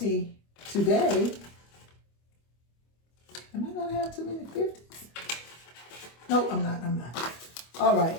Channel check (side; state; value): right; late; 25 ms